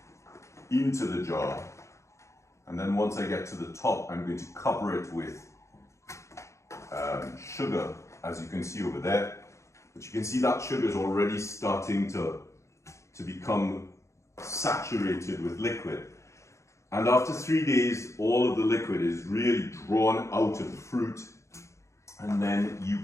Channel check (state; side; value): late; right; 0.14 ms